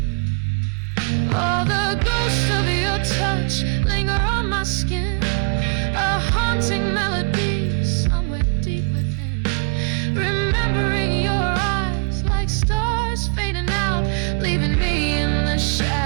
Oh, the ghost of your touch linger on my skin, a haunting melody somewhere deep within. Remembering your eyes like stars fading out, leaving me in the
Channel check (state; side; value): quieter; left; 39.8 dB